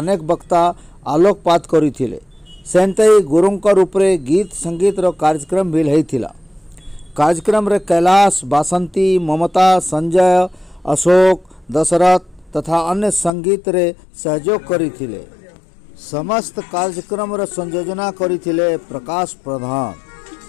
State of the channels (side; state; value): right; drops out; at 13.3 s